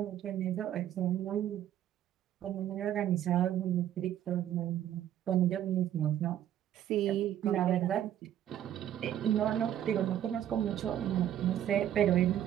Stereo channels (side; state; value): left; quieter; 11.3 dB